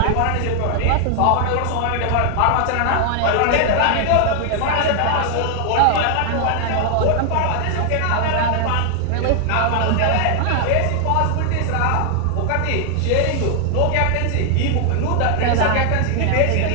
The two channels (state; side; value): different; both; correlation 0.00